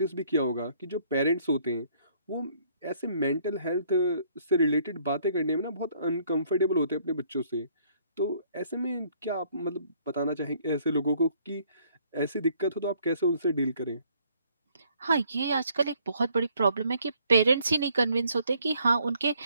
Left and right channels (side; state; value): both; inverted; correlation -0.64